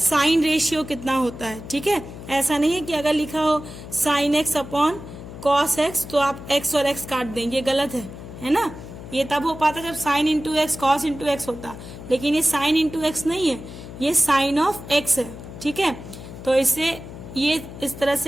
रेशियो कितना होता है। ठीक है, ऐसा नहीं है कि अगर लिखा हो sine x upon cos x तो आप एक्स और एक्स काट देंगे, ये गलत है ना। ये तब हो पाता जब sine into x cos into x होता, लेकिन ये साइन इंटू एक्स नहीं है, ये साइन ऑफ एक्स है। ठीक है, तो इसे ये इस तरह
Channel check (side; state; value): left; noise; hum, 13 dB below the sound